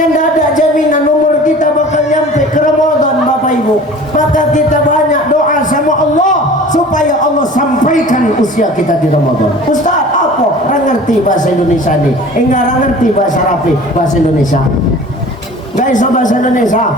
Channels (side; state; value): both; normal; correlation 0.43